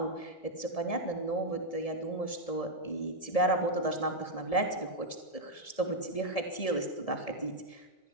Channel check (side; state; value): right; late; 1.7 ms